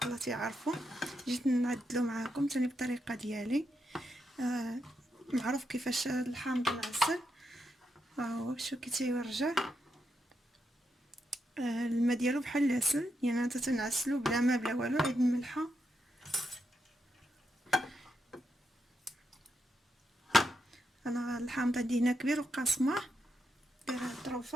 الله تيعرفوا. جيت نعدلو معاكم ثاني بالطريقه ديالي. معروف كيفاش الحامض معسل. هو شو كي تيورجع. الماء ديالو بحال العسل، يعني انت تنعسلو بلا ما بلا والو، عيد الملحه. انا الحامض عندي هنا كبير وقاسمه، دايره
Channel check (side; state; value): both; normal; correlation 0.83